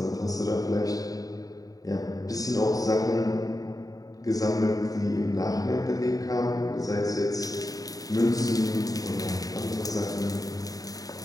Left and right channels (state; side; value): late; right; 0.18 ms